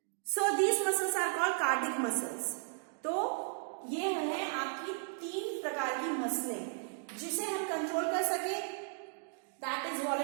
So these muscles are called cardiac muscles. तो ये है आपकी तीन प्रकार की मसलें, जिसे हम कंट्रोल कर सके दैट इज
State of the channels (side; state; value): left; silent; digital silence